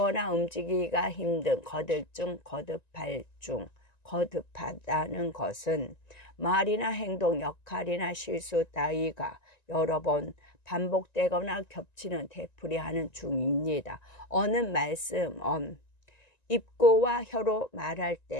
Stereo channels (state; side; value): late; right; 1.9 ms